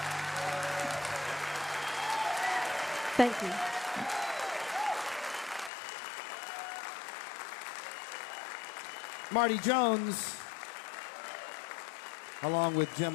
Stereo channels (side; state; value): right; drops out; at 5.7 s